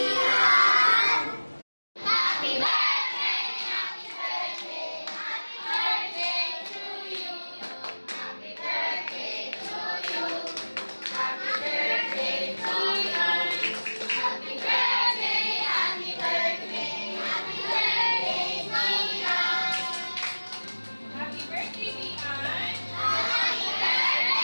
Happy birthday, happy birthday, happy birthday to you. Happy birthday to you. Happy birthday, Dian. Happy birthday, happy birthday, happy birthday, Dian. Happy birthday, Dian! Happy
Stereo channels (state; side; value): inverted; both; correlation -1.00